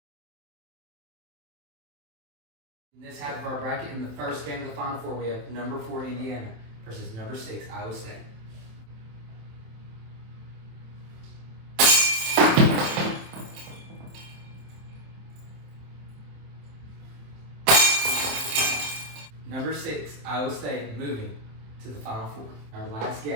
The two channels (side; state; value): left; late; 27 ms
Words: In this half of our bracket, in the first game of the Final Four, we have number 4 Indiana versus number 6 Iowa State. Number 6 Iowa State moving to the Final Four. Our last